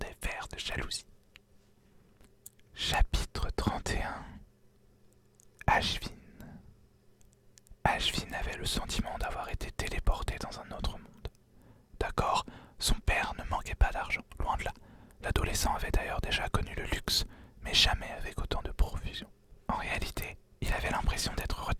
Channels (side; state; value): both; identical; correlation 1.00